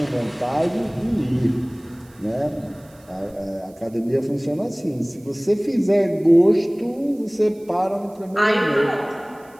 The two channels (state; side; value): noise; right; hiss, 29 dB below the sound